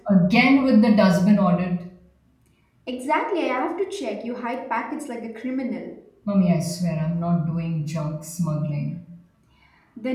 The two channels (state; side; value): identical; both; correlation 1.00